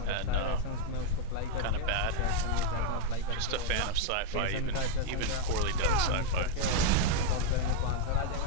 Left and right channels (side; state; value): both; different; correlation 0.00